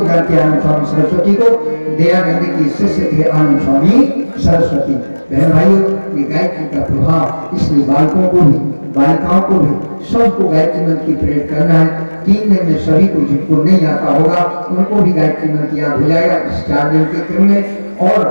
जानते हैं आनंद स्वामी सरस्वती को, दयानंद की शिष्य थे आनंद स्वामी सरस्वती। बहन भाइयों, ये गायत्री का प्रभाव इसलिए बालकों को भी बालिकाओं को भी सबको गायत्री मंत्र की प्रेरित करना है। 3 दिन में सभी को जिनको नहीं आता होगा उनको भी गायत्री मंत्र याद हो जाएगा इस 4 दिन के क्रम में, और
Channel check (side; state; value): both; inverted; correlation -1.00